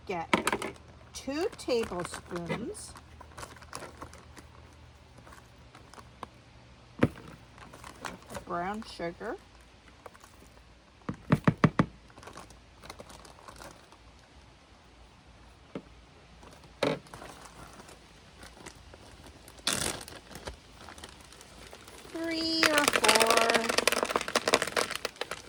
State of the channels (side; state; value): both; identical; correlation 1.00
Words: get 2 tablespoons of brown sugar. Three or 4